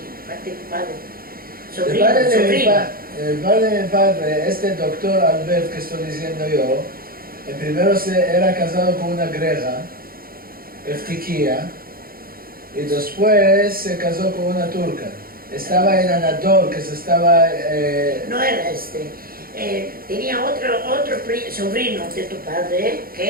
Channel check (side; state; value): left; late; 0.43 ms